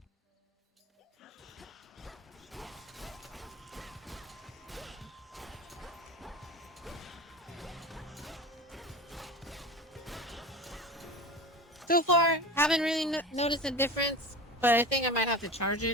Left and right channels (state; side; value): normal; both; correlation 0.32